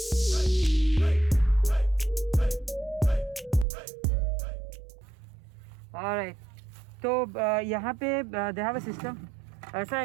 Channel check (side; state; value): left; drops out; at 3.7 s